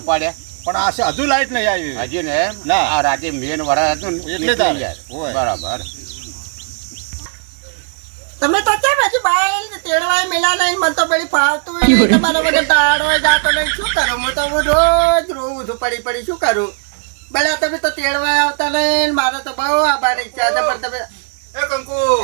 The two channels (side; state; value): left; silent; 61 dB below the other